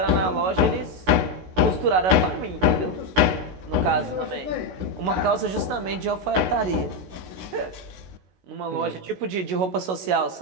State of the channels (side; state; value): left; late; 16 ms